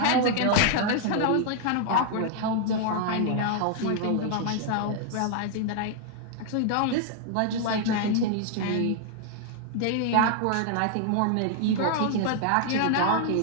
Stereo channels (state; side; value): different; both; correlation 0.00